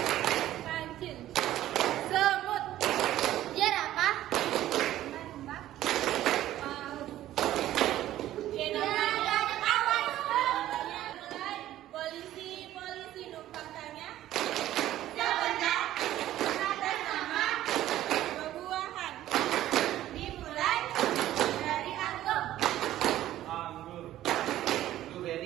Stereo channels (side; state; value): left; quieter; 13.6 dB